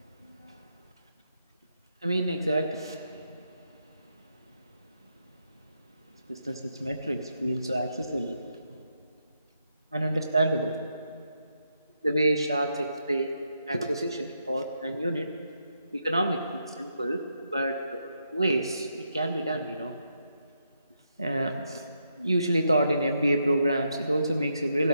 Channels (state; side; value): inverted; both; correlation -0.80